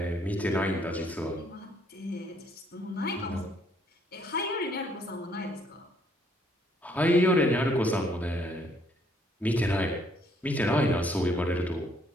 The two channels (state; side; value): normal; both; correlation 0.67